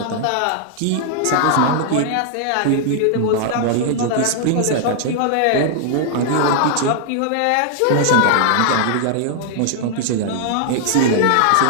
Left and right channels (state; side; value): different; both; correlation -0.01